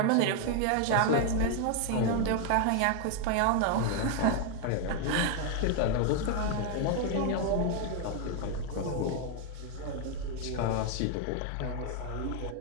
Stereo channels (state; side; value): different; both; correlation 0.00